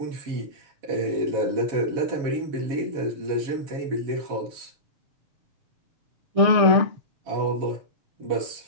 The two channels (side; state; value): left; late; 6.7 ms